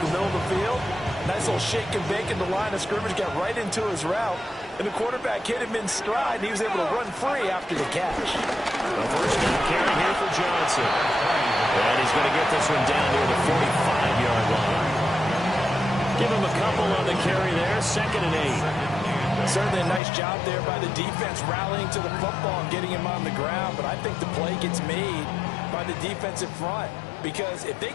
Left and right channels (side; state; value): right; drops out; at 20.0 s